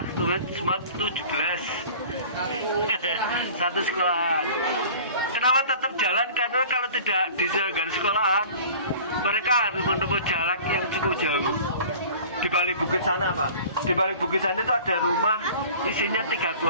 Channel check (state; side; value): inverted; both; correlation -0.44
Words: murid semua 17. Satu sekolah. Kenapa tetap jalan? Karena kalau tidak diselenggarakan sekolahan, mereka harus menempuh jalan yang cukup jauh. Di balik bukit sana Pak. Di balik bukit sana itu ada rumah isinya 3